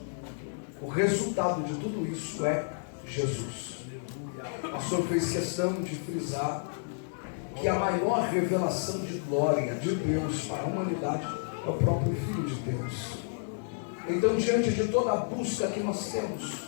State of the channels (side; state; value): right; silent; digital silence